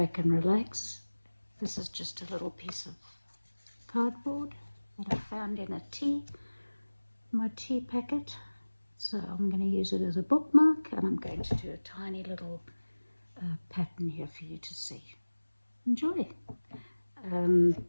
and relax. This is just a little piece of cardboard that I found in my tea packet, so I'm going to use it as a bookmark, and I'm going to do a tiny little pattern here for you to see. Enjoy.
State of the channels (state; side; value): inverted; both; correlation -1.00